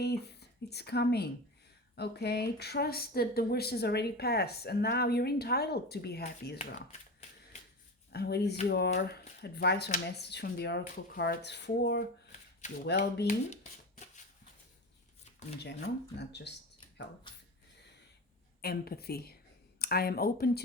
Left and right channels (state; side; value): normal; both; correlation 0.27